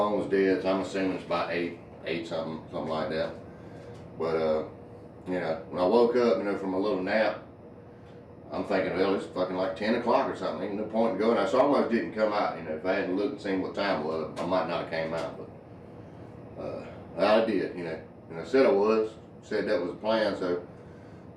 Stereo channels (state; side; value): identical; both; correlation 1.00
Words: was dead, so I'm assuming it's about 8 something like that. But, you know, when I woke up, you know, from a little nap, I'm thinking, well, it's fucking like 10 o'clock or something. Ain't no point in going out. So I almost didn't come out. You know, if I hadn't looked and seen what time it was, I might not have came out. But I did, you know. And I said I was. Said that was the plan, so